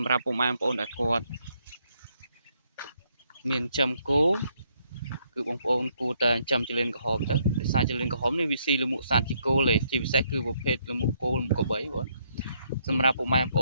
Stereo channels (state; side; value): inverted; both; correlation -0.73